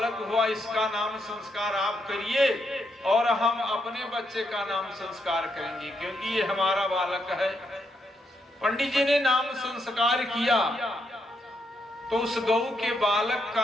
हुआ इसका नाम संस्कार आप करिए और हम अपने बच्चे का नाम संस्कार करेंगे, क्योंकि ये हमारा बालक है। पंडित जी ने नाम संस्कार किया तो उस गऊ के बालक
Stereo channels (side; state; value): both; normal; correlation 0.79